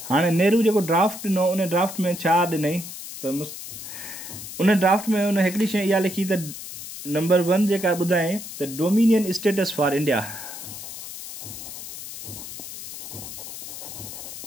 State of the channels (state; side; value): noise; left; hiss, 11 dB below the sound